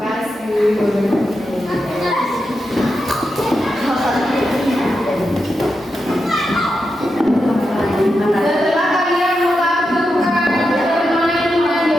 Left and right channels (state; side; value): normal; both; correlation 0.87